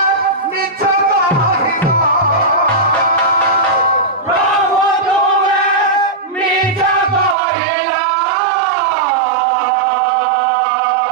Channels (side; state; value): left; drops out; at 7.4 s